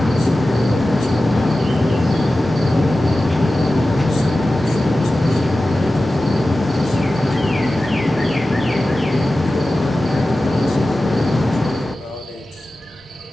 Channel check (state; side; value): normal; both; correlation 0.95